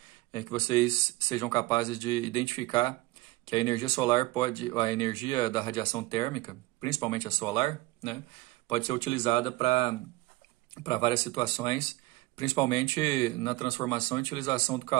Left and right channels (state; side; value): quieter; left; 20.1 dB